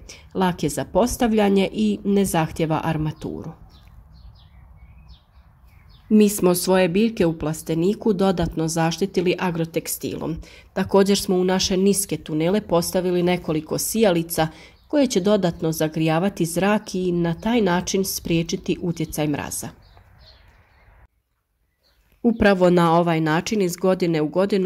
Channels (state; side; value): identical; both; correlation 1.00